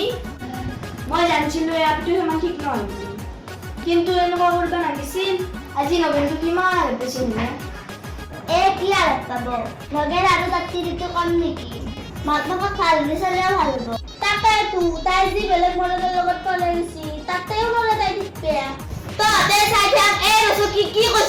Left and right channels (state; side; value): identical; both; correlation 1.00